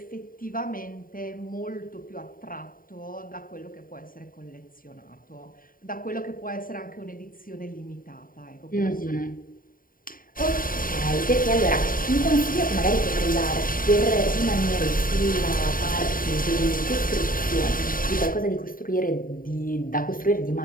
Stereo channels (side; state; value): right; late; 0.41 ms